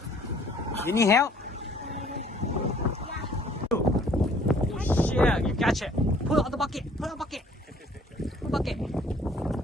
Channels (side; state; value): both; normal; correlation 0.57